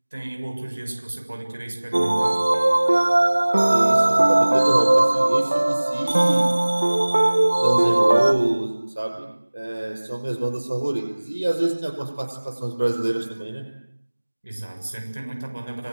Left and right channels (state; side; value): inverted; both; correlation -1.00